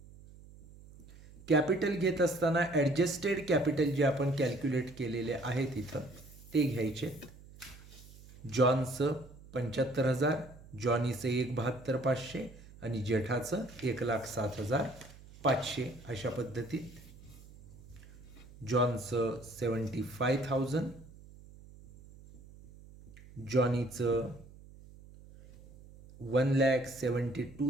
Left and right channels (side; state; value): right; noise; hum, 20 dB below the sound